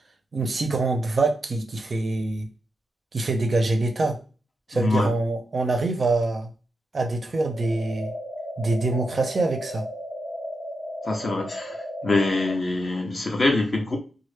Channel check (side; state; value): both; normal; correlation 0.85